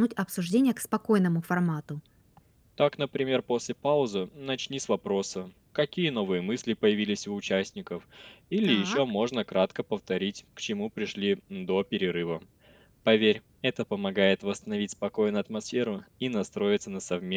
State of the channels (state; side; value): identical; both; correlation 1.00